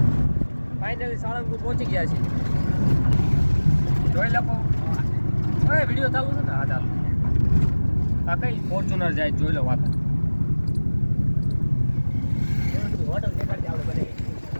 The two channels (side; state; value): both; inverted; correlation -1.00